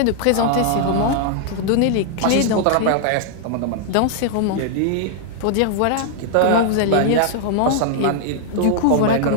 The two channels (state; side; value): different; both; correlation -0.01